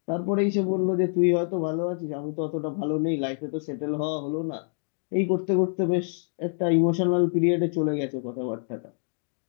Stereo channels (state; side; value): silent; right; 61 dB below the other